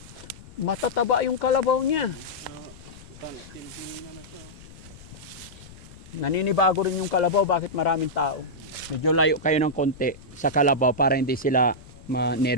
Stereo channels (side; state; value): left; noise; rumble, 19 dB below the sound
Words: Matataba yung kalabaw niya. Tintingin na siya. Naninibago rin yung kalabaw, bakit maraming tao. Medyo layo kayo ng konti sa kalabaw para hindi sila